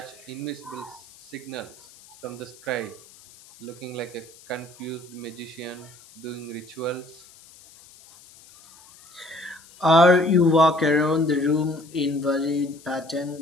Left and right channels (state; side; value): noise; left; hiss, 23 dB below the sound